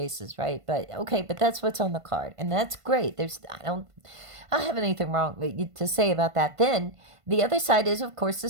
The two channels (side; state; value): left; late; 1.5 ms